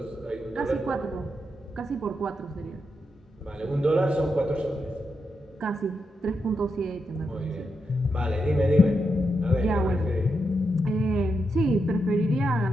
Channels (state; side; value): normal; both; correlation 0.84